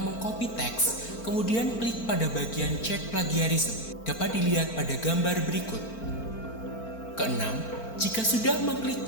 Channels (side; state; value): right; late; 4.4 ms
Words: mengcopy teks, kemudian klik pada bagian cek plagiarisme. Dapat dilihat pada gambar berikut. Keenam, jika sudah mengklik